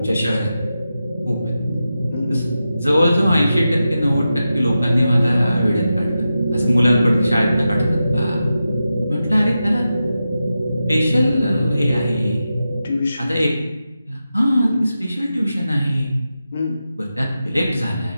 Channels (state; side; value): inverted; both; correlation -0.91